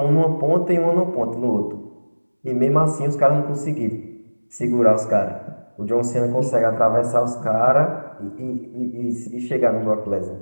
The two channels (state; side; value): inverted; both; correlation -1.00